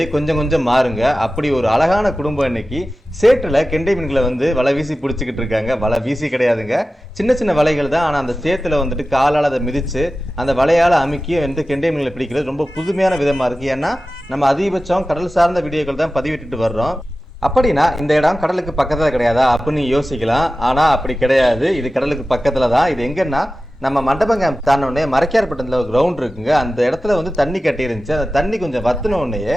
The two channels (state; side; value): normal; both; correlation 0.95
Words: கொஞ்சம் கொஞ்சம் மாறுங்க. அப்படி ஒரு அழகான குடும்பம் இன்னைக்கு சேற்றில் கெண்டை மீன்களை வலை வீசி பிடிச்சிக்கிட்டு இருக்காங்க. வலை வீசி கிடையாதுங்க, சின்ன சின்ன வலைகள் தான். ஆனால் அந்த சேத்துல காலால் அதை மிதித்து அந்த வலையால் அமுக்கி கெண்டை மீன்களை பிடிக்கிறது ரொம்ப புதுமையான விதமாக இருக்குது. ஏன்னா நம்ம அதிகபட்சம் கடல் சார்ந்த வீடியோக்கள் தான் பதிவிட்டுட்டு வர்றோம். அப்படின்னா இந்த இடம் கடலுக்கு பக்கத்தில் கிடையாதா அப்படின்னு யோசிக்கலாம். ஆனால் அப்படி கிடையாது, இது கடலுக்கு பக்கத்தில் தான். இது எங்கன்னா நம்ம மண்டபம் கேம்ப் தானோடனே மரைக்கார்பட்டத்தில் ஒரு கிரவுண்ட் இருக்குங்க. அந்த இடத்துல தண்ணி கட்டி இருந்துச்சு. அந்த தண்ணி கொஞ்சம் வத்தினோடனே